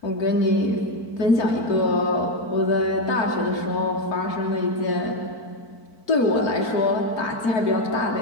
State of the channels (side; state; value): right; late; 4.5 ms